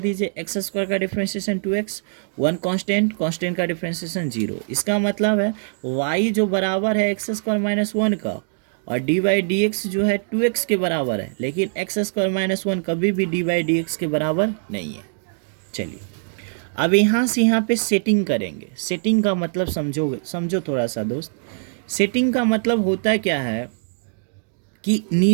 x² का डिफ्रेंशिएशन 2x, 1 कांस्टेंट का डिफ्रेंशिएशन 0। इसका मतलब है y जो बराबर है x² - 1 का, और dy/dx जो है 2x के बराबर है, लेकिन x² - 1 कभी भी dy/dx के बराबर नहीं है। चलिए, अब यहाँ से यहाँ पे सेटिंग करेंगे। सेटिंग का मतलब समझो थोड़ा सा दोस्त। सेटिंग का मतलब होता क्या है कि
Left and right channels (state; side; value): silent; left; digital silence